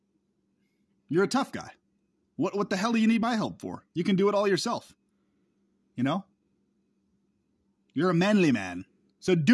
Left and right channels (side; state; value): both; identical; correlation 1.00